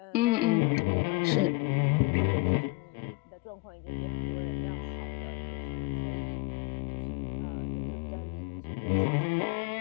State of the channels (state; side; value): quieter; right; 23.6 dB